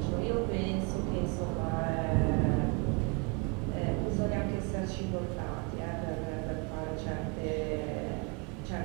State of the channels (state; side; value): quieter; left; 30.6 dB